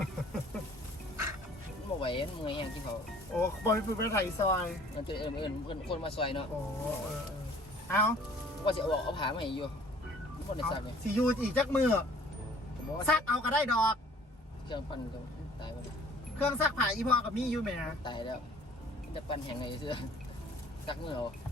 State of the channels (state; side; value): normal; both; correlation 0.53